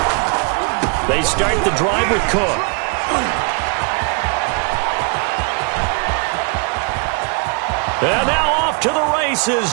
They start the drive with Cook. And now off to the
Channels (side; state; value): left; quieter; 34.9 dB